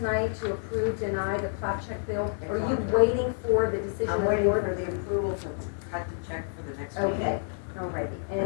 to approve, deny the plat check bill. Are you waiting for the decision I'm of the waiting board? for the approval to cut the check for the next meeting. Okay, alrighty.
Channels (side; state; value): right; silent; 59 dB below the other